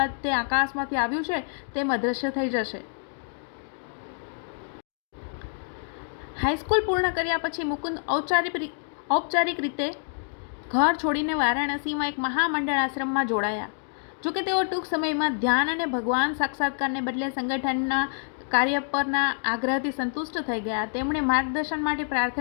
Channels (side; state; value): right; silent; 60 dB below the other